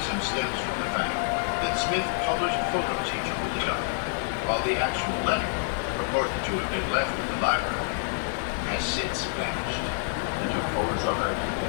stems from the fact that Smith published photos he took of the document, while the actual letter, purported to have been left in the library, has since vanished. We took photos of it,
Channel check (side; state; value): right; silent; digital silence